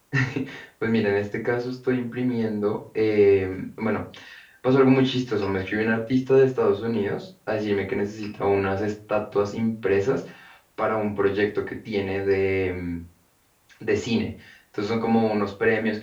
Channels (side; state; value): both; identical; correlation 1.00